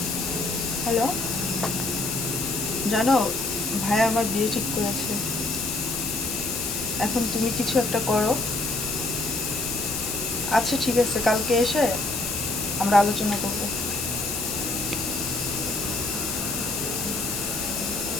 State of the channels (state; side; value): noise; left; hiss, 3 dB below the sound